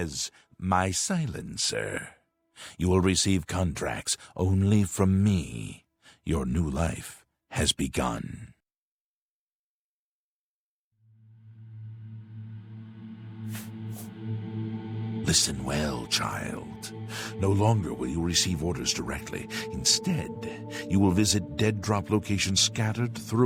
my silencer. You will receive contracts only from me. Your new life has begun. Listen well, child. No longer will you receive orders directly. Instead, you will visit dead drop locations scattered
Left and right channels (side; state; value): both; identical; correlation 1.00